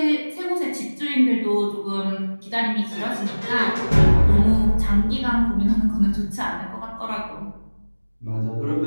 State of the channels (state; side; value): inverted; both; correlation -1.00